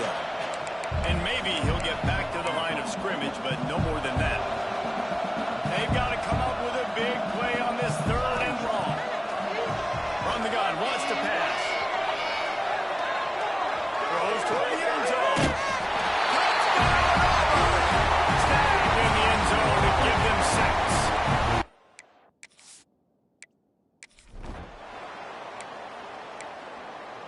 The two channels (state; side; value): identical; both; correlation 1.00